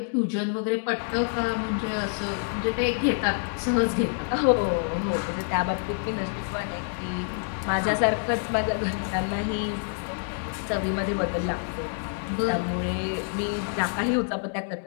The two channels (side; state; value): right; silent; 57 dB below the other